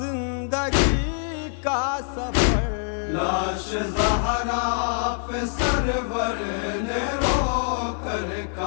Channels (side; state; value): right; silent; 62 dB below the other